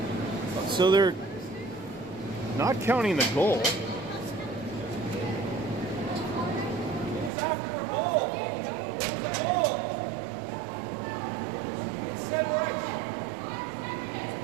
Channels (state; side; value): drops out; left; at 7.3 s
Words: So they're not counting the goal.